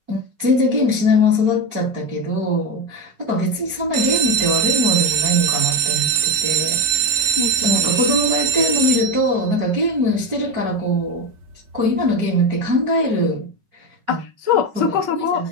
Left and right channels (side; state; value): left; late; 5.3 ms